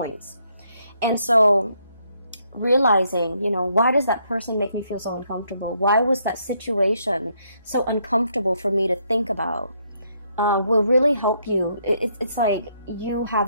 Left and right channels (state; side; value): inverted; both; correlation -0.73